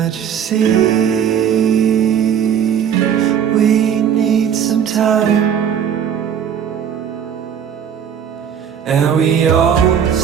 you see? We need some time. And we all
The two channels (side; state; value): left; quieter; 8.5 dB